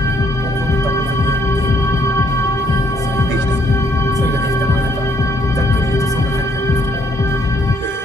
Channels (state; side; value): normal; both; correlation 0.69